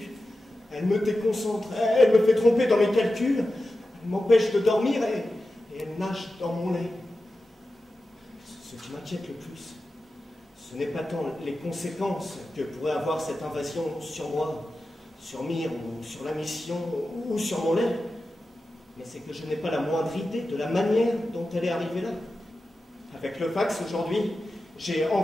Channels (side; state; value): both; normal; correlation 0.92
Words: Elle me déconcentre. Elle me fait tromper dans mes calculs. Elle m'empêche de dormir et elle nage dans mon lait. Ce qui m'inquiète le plus, ce n'est pas tant les conséquences que pourrait avoir cette invasion sur moi, sur Myre, ou sur la mission, ou sur mon lait, mais c'est que je n'ai pas la moindre idée de la manière dont elle est arrivée là. Avec le fax aujourd'hui, j'ai